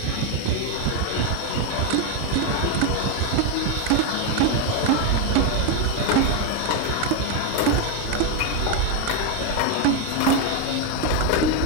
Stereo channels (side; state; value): both; different; correlation 0.01